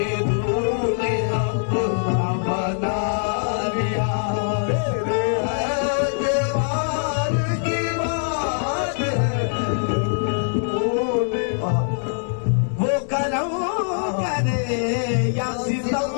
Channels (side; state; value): right; silent; digital silence